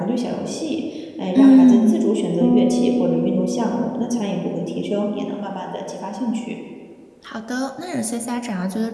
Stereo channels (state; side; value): identical; both; correlation 1.00